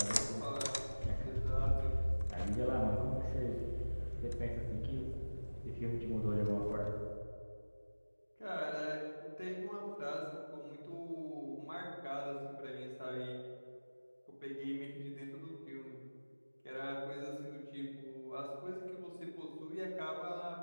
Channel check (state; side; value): inverted; both; correlation -1.00